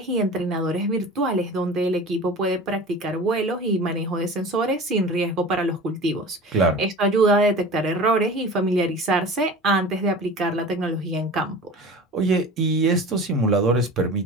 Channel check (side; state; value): both; normal; correlation 0.37